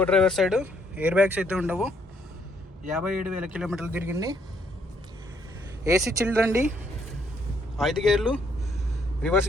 driver side, air bags అయితే ఉండవు. 57,000 కిలోమీటర్లు తిరిగింది. ఏసీ చిల్డ్ అండి, 5 గేర్లు,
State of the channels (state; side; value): normal; both; correlation 0.69